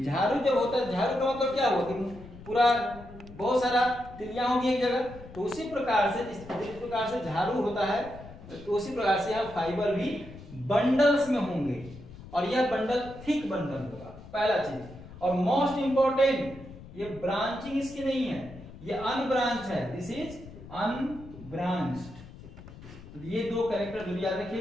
झाड़ू जब होता है, झाड़ू का मतलब क्या हुआ कि पूरा बहुत सारा तिल्लियां होगी एक जगह, तो उसी प्रकार से जिस प्रकार से झाड़ू होता है, तो उसी प्रकार से यहाँ फाइबर भी बंडल्स में होंगे और यह बंडल थिक बंडल होगा, पहला चीज। और मोस्ट इंपॉर्टेंट, ये ब्रांचिंग इसकी नहीं है, ये अनब्रांच है, दिस इज अनब्रांच्ड। तो ये दो कैरेक्टर जरूर याद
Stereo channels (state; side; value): noise; left; rumble, 17 dB below the sound